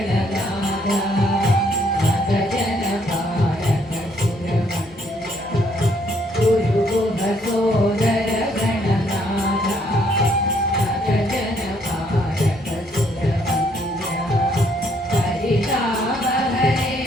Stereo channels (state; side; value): normal; both; correlation 0.68